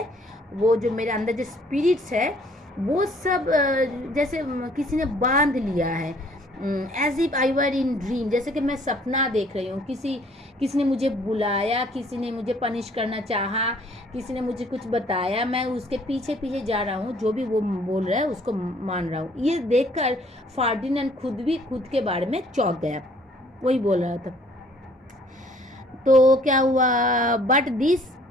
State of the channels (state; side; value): normal; both; correlation 0.59